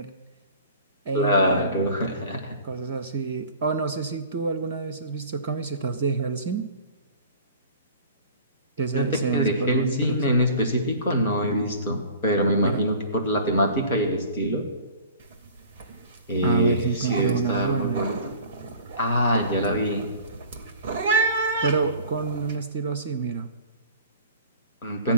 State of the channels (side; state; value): both; inverted; correlation -0.44